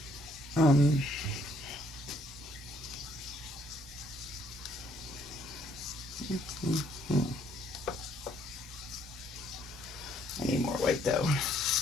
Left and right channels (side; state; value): both; normal; correlation 0.66